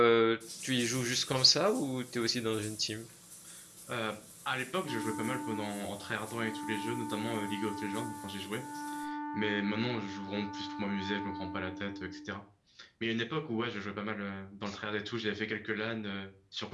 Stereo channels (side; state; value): both; identical; correlation 1.00